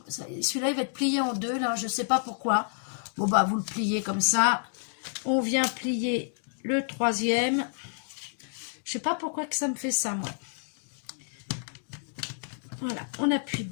Celui-là, il va être plié en 2, là, je sais pas pourquoi. Bon, bah, vous le pliez comme ça. On vient plier le 3e. Je sais pas pourquoi que ça me fait ça, moi. Voilà, on appuie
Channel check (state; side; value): silent; right; digital silence